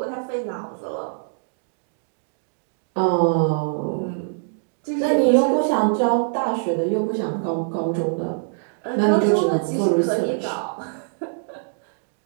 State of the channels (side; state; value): left; silent; digital silence